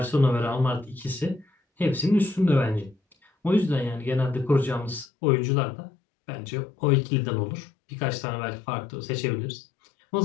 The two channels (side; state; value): right; drops out; at 5.1 s